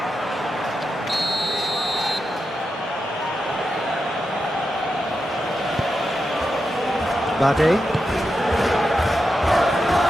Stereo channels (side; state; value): both; normal; correlation 0.88